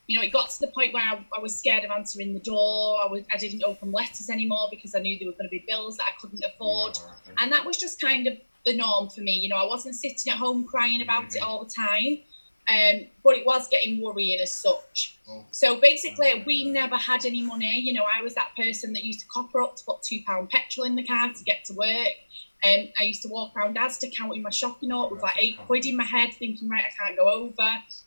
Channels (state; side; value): inverted; both; correlation -1.00